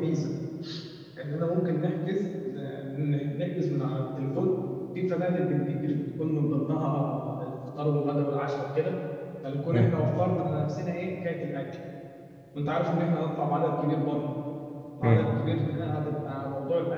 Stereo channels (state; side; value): identical; both; correlation 1.00